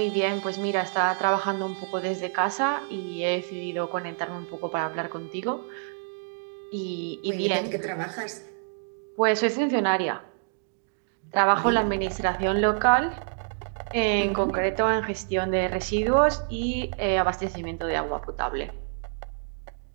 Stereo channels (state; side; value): silent; left; digital silence